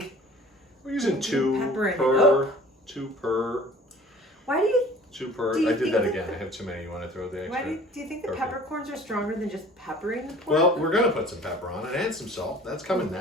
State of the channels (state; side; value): normal; both; correlation 0.47